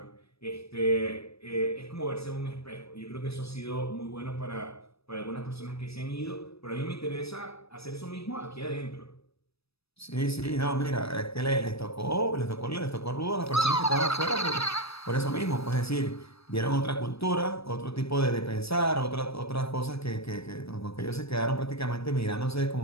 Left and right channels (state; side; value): late; right; 0.78 ms